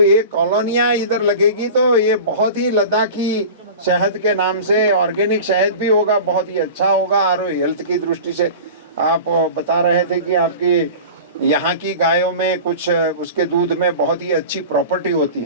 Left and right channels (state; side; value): inverted; both; correlation -0.35